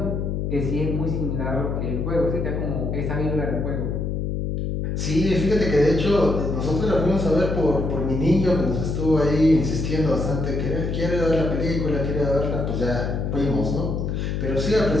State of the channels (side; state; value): left; noise; hum, 1 dB below the sound